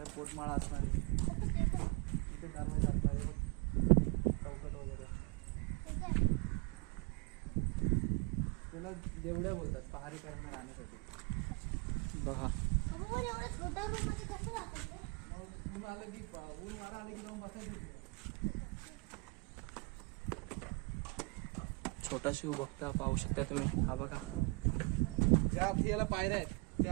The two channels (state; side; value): quieter; left; 29.9 dB